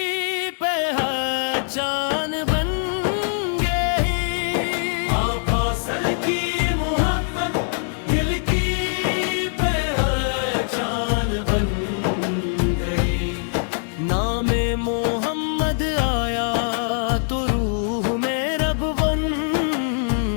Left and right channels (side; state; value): right; silent; 64 dB below the other